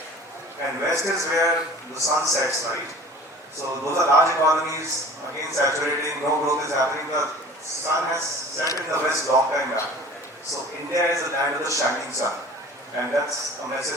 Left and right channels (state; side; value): normal; both; correlation 0.44